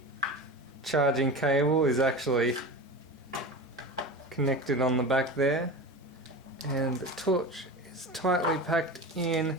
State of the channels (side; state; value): both; normal; correlation 0.29